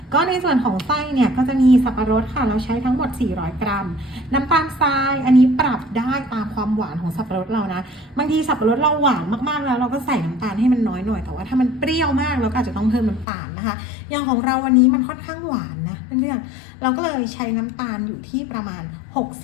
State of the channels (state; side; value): drops out; right; at 13.2 s